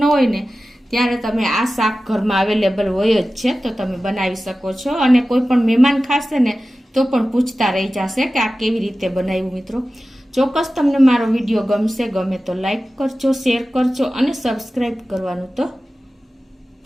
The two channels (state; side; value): normal; both; correlation 0.95